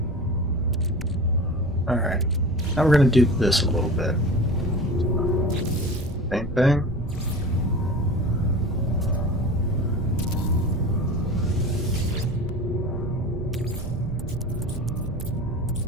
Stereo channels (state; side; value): normal; both; correlation 0.35